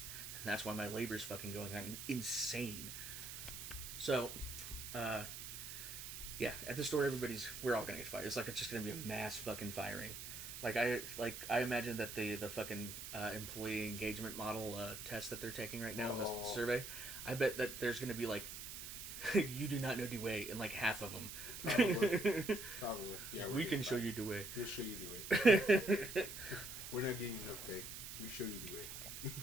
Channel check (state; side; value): noise; right; hiss, 8 dB below the sound